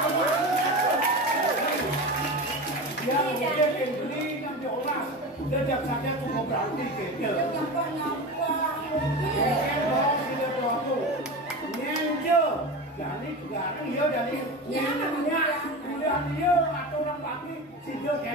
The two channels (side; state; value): both; normal; correlation 0.26